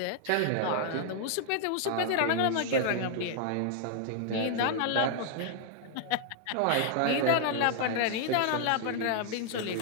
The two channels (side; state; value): both; different; correlation -0.01